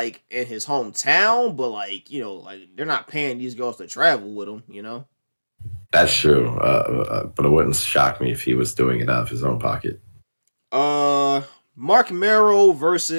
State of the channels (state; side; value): inverted; both; correlation -1.00